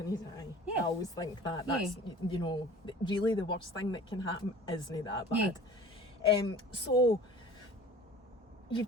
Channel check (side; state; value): both; normal; correlation 0.44